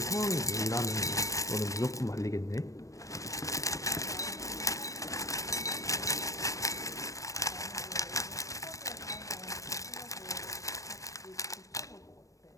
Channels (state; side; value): late; right; 0.16 ms